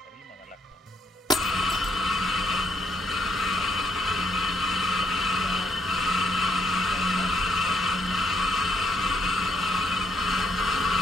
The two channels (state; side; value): normal; both; correlation 0.73